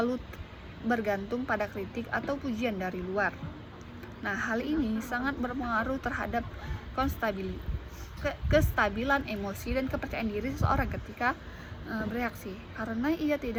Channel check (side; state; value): both; identical; correlation 1.00